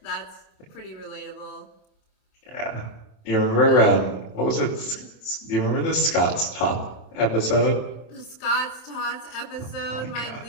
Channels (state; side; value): late; right; 27 ms